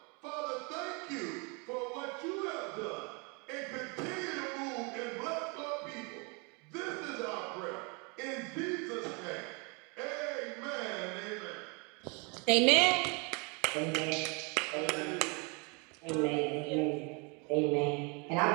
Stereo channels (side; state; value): left; quieter; 31.9 dB